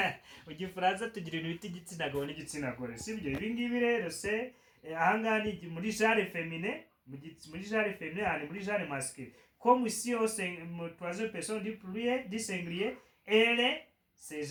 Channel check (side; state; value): both; identical; correlation 1.00